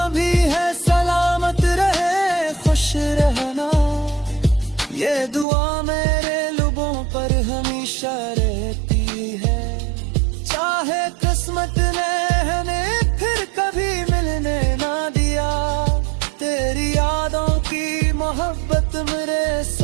भी है सलामत रहे खुश रहना, ये दुआ मेरे लबों पर हमेशा रहती है। चाहे किस्मत ने हमें फिर कभी मिलने ना दिया, तेरी यादों की मोहब्बत मेरे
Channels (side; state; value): left; drops out; at 5.5 s